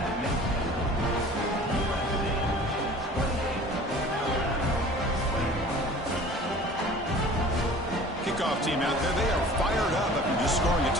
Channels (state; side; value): normal; both; correlation 0.45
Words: Kickoff team out there, they are fired up after just scoring a